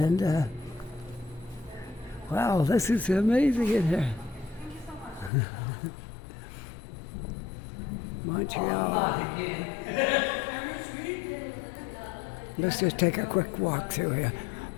wow, this is amazing in here. Montreal. Let's just take a quick walk through here.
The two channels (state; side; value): drops out; right; at 5.3 s